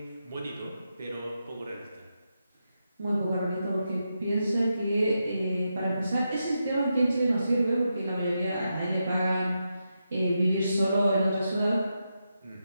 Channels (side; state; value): both; inverted; correlation -0.86